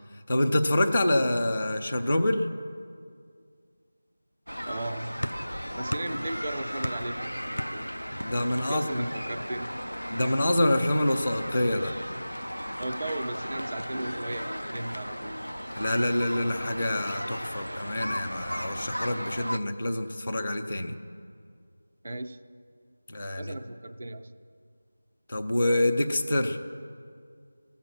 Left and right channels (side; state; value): both; inverted; correlation -0.96